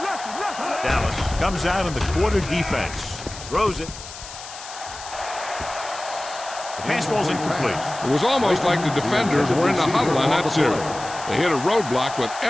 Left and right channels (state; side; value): noise; left; hiss, 13 dB below the sound